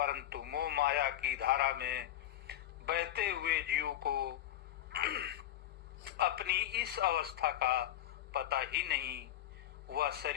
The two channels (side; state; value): right; quieter; 13.0 dB